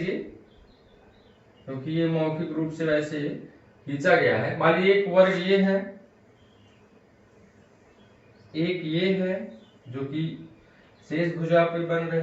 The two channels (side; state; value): both; identical; correlation 1.00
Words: क्योंकि ये मौखिक रूप से वैसे खींचा गया है। मान लीजिए एक वर्ग ये है, एक ये है जो कि शेष भुजा पे बन